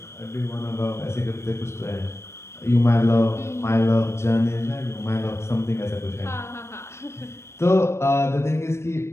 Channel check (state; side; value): late; right; 0.13 ms